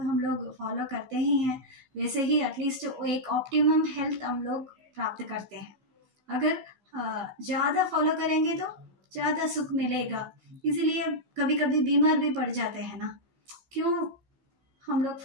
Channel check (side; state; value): left; late; 15 ms